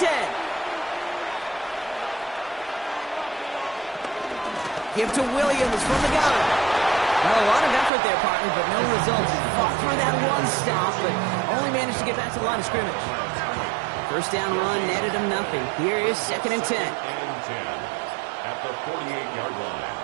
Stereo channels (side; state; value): left; drops out; at 7.9 s